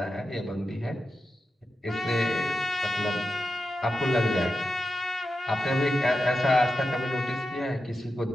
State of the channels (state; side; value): normal; both; correlation 0.90